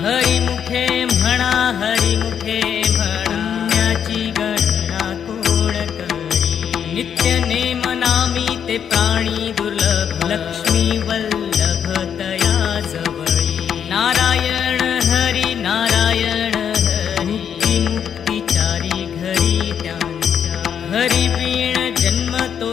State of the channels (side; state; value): right; quieter; 8.2 dB